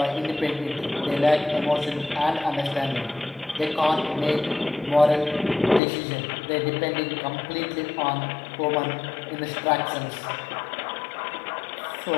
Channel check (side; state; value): right; drops out; at 5.8 s